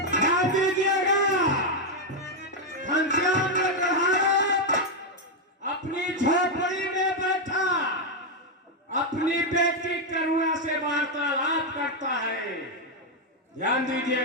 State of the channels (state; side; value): normal; both; correlation 0.02